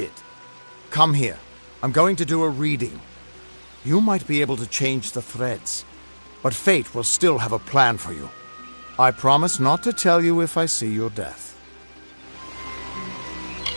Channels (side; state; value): both; inverted; correlation -1.00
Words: Come here. I'm going to do a reading. You might be able to change the threads, but fate will still have a plan for you. I promise not to tell you if I see your death.